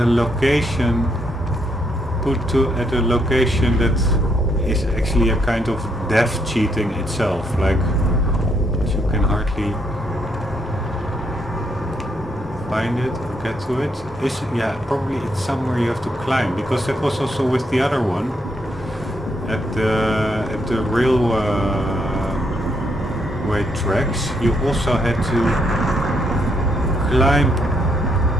location, at a location that is actually a kind of death cheating itself, like you can hardly find it or get to it. Yeah, probably it's somewhere you have to climb, because that was also with the other one at the railway tracks. You also had to climb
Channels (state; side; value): normal; both; correlation 0.75